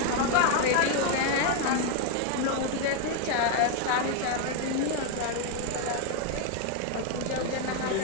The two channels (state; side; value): different; both; correlation 0.00